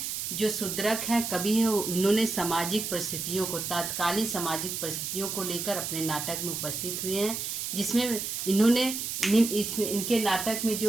जो शूद्रक हैं कवि हैं, उन्होंने सामाजिक परिस्थितियों को, तात्कालिक सामाजिक परिस्थितियों को लेकर अपने नाटक में उपस्थित हुए हैं, जिसमें इन्होंने इनके नाटक में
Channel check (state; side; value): noise; right; hiss, 4 dB below the sound